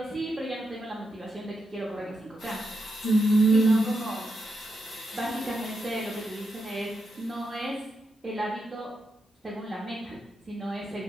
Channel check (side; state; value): both; normal; correlation 0.85